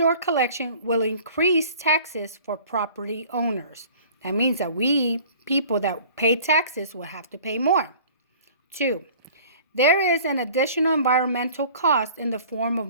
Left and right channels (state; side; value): inverted; both; correlation -0.47